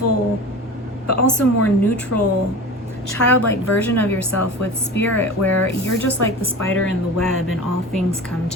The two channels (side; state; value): both; normal; correlation 0.34